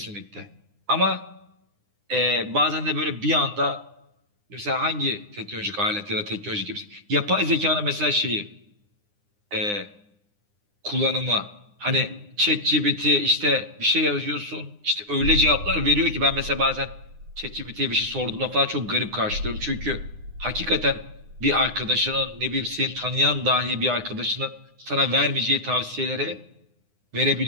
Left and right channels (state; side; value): late; left; 9.8 ms